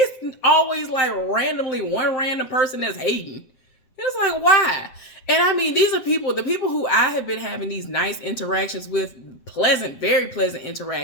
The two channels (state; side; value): late; right; 7.7 ms